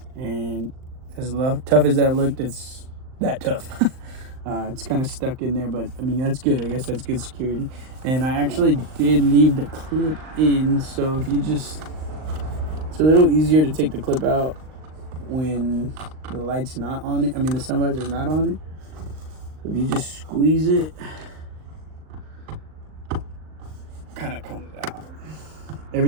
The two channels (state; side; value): late; left; 39 ms